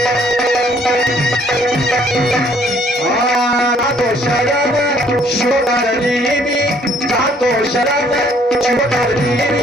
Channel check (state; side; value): normal; both; correlation 0.62